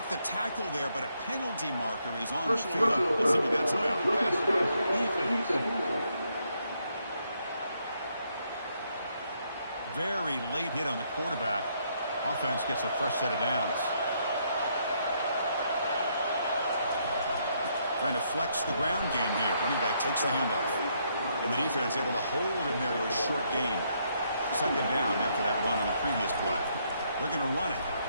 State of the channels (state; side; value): inverted; both; correlation -0.74